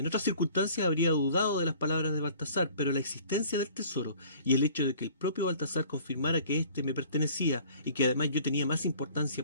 otras circunstancias habría dudado de las palabras de Baltasar, pero la existencia del tesoro y el hecho de que el propio Baltasar confirmara que éste me pertenecía y que además yo tenía más importancia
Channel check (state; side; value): inverted; both; correlation -0.51